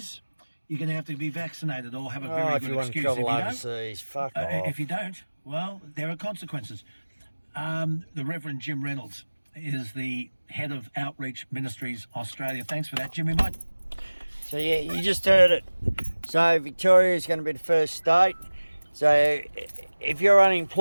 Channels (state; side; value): inverted; both; correlation -1.00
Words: you're going to have to be vaccinated or have a very good excuse. If you want to travel overseas, fuck off. If you don't, well, there are consequences. The Reverend Jim Reynolds is the head of Outreach Ministries Australia. Thanks for that, Jimmy. Mate. So yeah, you just heard it. So Victoria is going to be the first state. So if you're